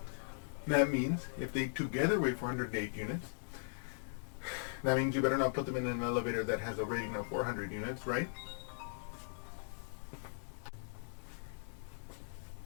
That means if they together weigh 408 units, that means you better not put them in an elevator that has a rating of 400 units, right?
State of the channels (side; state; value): right; silent; digital silence